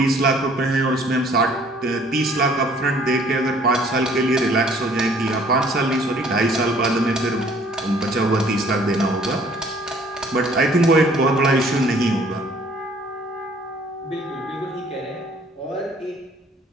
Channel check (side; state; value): both; normal; correlation 0.57